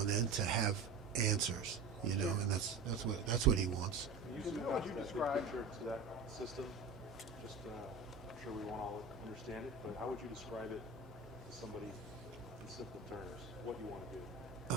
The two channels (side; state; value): left; quieter; 4.3 dB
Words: and then, to have answers, and that's what he wants. How would you describe to that system? Just, I'm sure we won't all understand it, but how would you describe it to somebody in simple terms? What you want to